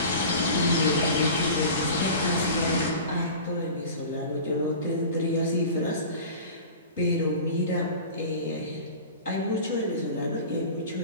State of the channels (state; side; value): inverted; both; correlation -0.36